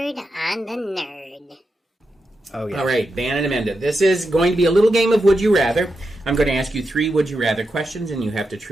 on the Nerd? Oh, yeah. All right, Ben and Amanda, this is going to be a little game of Would You Rather. I'm going to ask you 3 Would You Rather questions, and you have to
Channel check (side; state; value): both; normal; correlation 0.87